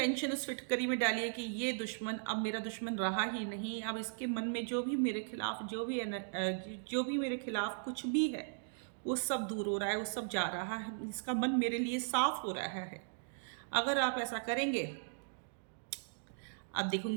उस फिटकरी में डालिए कि ये दुश्मन अब मेरा दुश्मन रहा ही नहीं, अब इसके मन में जो भी मेरे खिलाफ जो भी मेरे खिलाफ कुछ भी है वो सब दूर हो रहा है, वो सब जा रहा है, इसका मन मेरे लिए साफ हो रहा है। अगर आप ऐसा करेंगे, आप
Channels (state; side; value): silent; left; digital silence